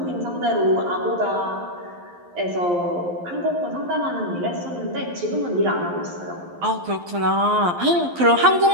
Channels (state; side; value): late; left; 11 ms